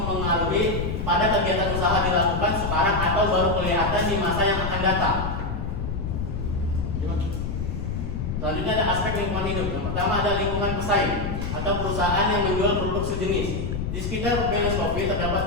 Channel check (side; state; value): left; noise; rumble, 3 dB below the sound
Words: pada kegiatan usaha dilakukan sekarang atau baru kelihatan di masa yang akan datang. Selanjutnya ada aspek lingkungan hidup. Yang pertama ada lingkungan pesaing atau perusahaan yang menjual produk sejenis. Di sekitar Venus Coffee